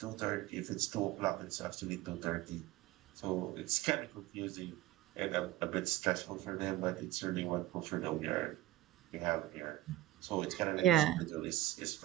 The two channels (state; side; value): quieter; left; 15.9 dB